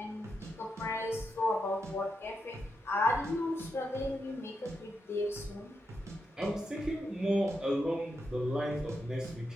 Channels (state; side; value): normal; both; correlation 0.85